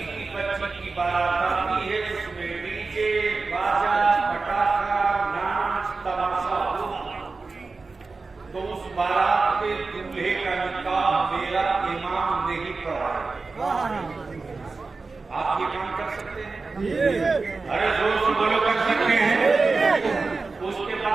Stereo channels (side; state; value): left; quieter; 4.0 dB